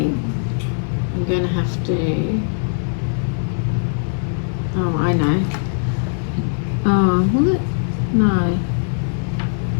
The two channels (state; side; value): silent; right; digital silence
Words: I'm going to have to, oh, I know. Oh, will it? No.